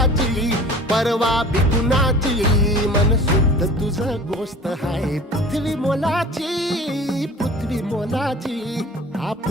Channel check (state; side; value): normal; both; correlation 0.43